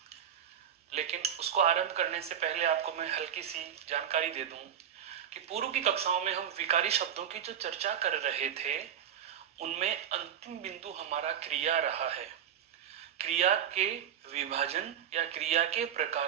लेकिन उसको आरंभ करने से पहले आपको मैं हल्की सी जानकारी दे दूं कि पूर्व की कक्षाओं में हम विकारी शब्दों की जो चर्चा कर रहे थे उनमें अंतिम बिंदु हमारा क्रिया रहा है। क्रिया के विभाजन या क्रिया के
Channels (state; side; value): quieter; left; 9.2 dB